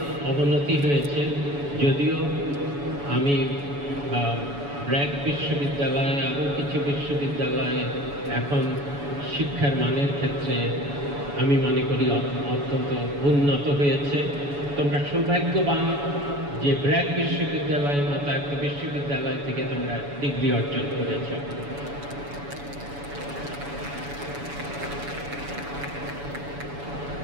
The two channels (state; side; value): late; left; 7.0 ms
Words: অবনতি হয়েছে। যদিও আমি ব্র্যাক বিশ্ববিদ্যালয়ে, আরও কিছু বিশ্ববিদ্যালয়ে এখন শিক্ষার মানের ক্ষেত্রে আমি মনে করি অত্যন্ত উন্নত হয়েছে। তোমরা সৌভাগ্যবান যে ব্র্যাক বিশ্ববিদ্যালয়ের মতো একটা বিশ্ববিদ্যালয় থেকে তোমরা ডিগ্রি অর্জন করেছ।